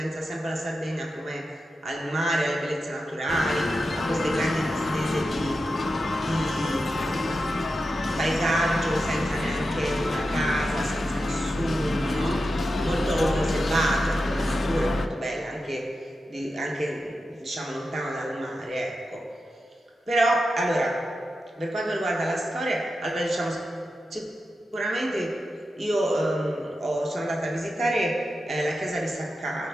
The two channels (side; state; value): both; normal; correlation 0.90